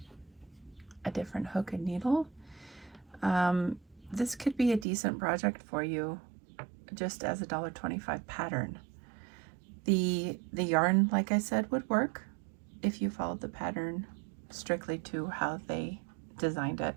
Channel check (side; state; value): left; drops out; at 4.9 s